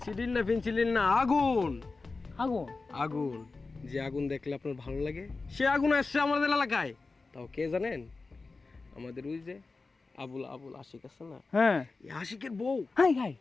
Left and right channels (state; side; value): quieter; right; 3.9 dB